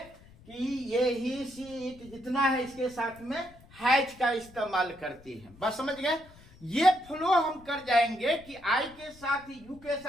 ये ही, सी, इट जितना है इसके साथ में हैज का इस्तेमाल करते हैं। बस समझ गए। ये फ्लो हम कर जाएंगे कि आई के साथ, यू के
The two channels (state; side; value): noise; left; rumble, 23 dB below the sound